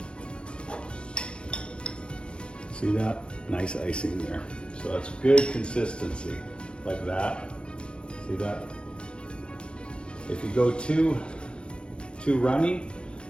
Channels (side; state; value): right; late; 0.057 ms